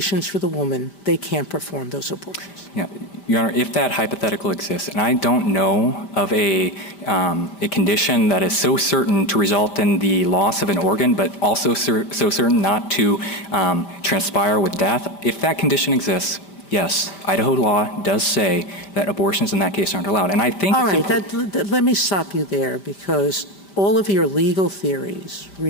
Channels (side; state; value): right; late; 5.1 ms